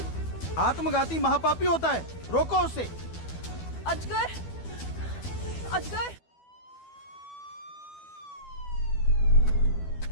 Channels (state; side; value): late; right; 12 ms